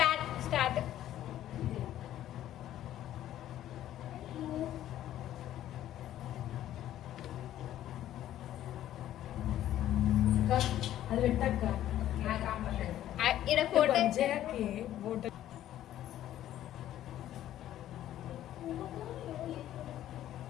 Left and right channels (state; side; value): quieter; right; 12.5 dB